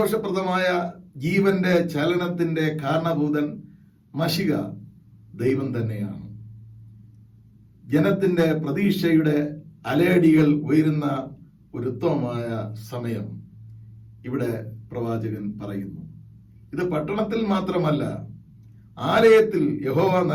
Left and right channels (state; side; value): identical; both; correlation 1.00